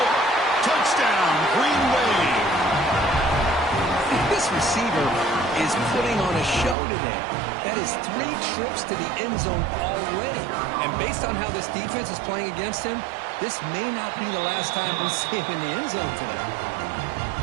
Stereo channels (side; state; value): left; drops out; at 6.8 s